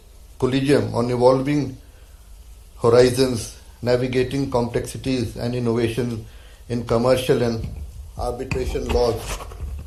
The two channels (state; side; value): identical; both; correlation 1.00